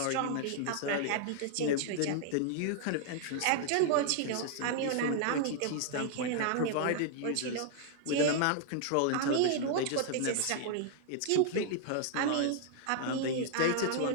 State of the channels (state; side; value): different; both; correlation 0.00